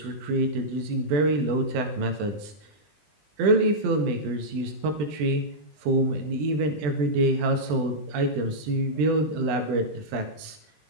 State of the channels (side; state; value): left; late; 20 ms